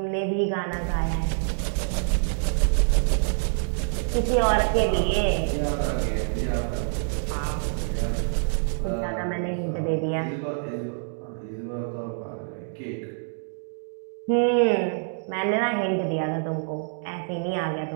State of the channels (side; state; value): left; silent; 61 dB below the other